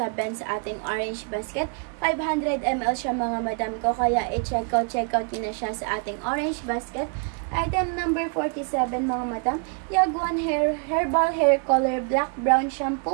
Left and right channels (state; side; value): quieter; left; 38.6 dB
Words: sa ating orange basket. 500 ml siya mga madam ko. Kaya i-check out yun na siya sa ating orange basket. Item number 47 mga madam. Yagwan Herbal Hair Color Black Brown